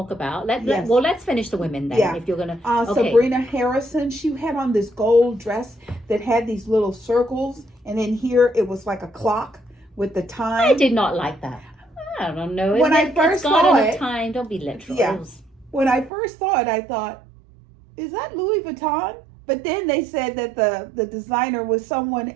about. Yes. Well, let's finish the women then. Yeah. If you're gonna, okay. Sabrina Harrison, she had on this gold dress that had these little circles, and in here it was like a clock with the time. I did not like that. I don't know. When I first saw it, time. Don't be literal. Yeah. When I first saw it, I thought, is that Louis Vuitton? But then they said that the designer was someone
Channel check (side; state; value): left; drops out; at 16.1 s